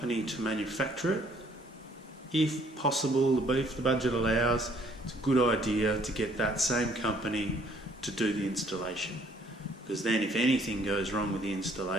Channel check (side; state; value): both; normal; correlation 0.62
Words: to manufacture it, if possible, if the budget allows, it's a good idea to get that same company to do the installation. Because then if anything goes wrong with the